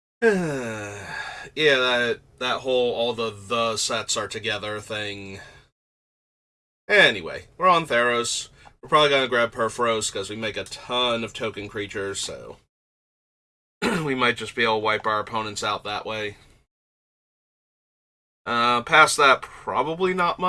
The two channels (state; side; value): identical; both; correlation 1.00